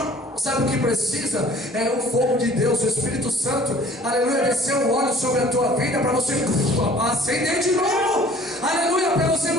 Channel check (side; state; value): both; normal; correlation 0.51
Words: Sabe o que precisa? É o fogo de Deus, o Espírito Santo, aleluia, descer o óleo sobre a tua vida para você acender de novo, aleluia, para você